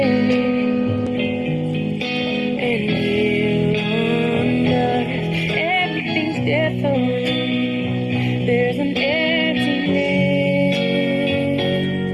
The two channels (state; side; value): identical; both; correlation 1.00